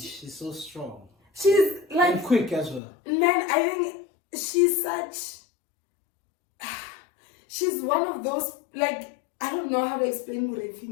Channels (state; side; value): drops out; right; at 2.8 s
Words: so strong. She's like... And quick as well. Man, I think she's one of those, like, I don't know how to explain